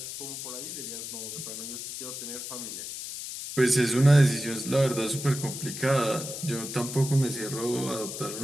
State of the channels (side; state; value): left; noise; hiss, 7 dB below the sound